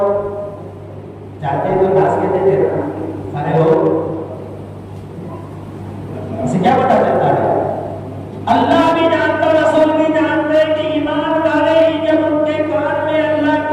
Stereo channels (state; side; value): identical; both; correlation 1.00